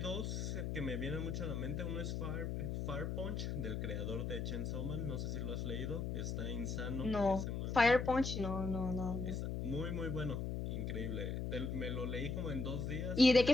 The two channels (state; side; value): noise; left; hum, 2 dB below the sound